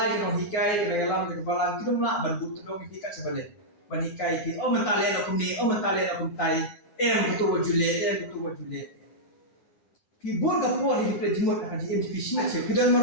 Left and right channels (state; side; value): late; right; 9.8 ms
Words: kinong hikai, kinong yalam, kinong balang, kinong la ban butuh dong hikai sebalik. Ban hikai ki, oh mentalen aku ni, oh mentalen aku tai. Betul wajule. Ki bon ka por hi pe jimot ka ji MCP smet se, kidan